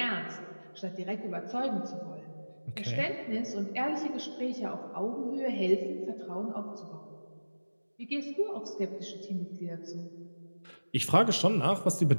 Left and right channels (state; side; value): inverted; both; correlation -1.00